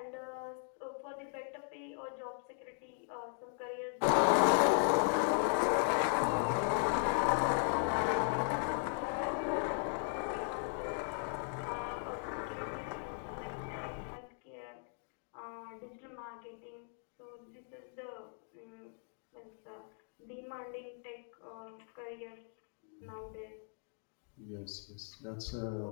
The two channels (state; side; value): silent; right; 53 dB below the other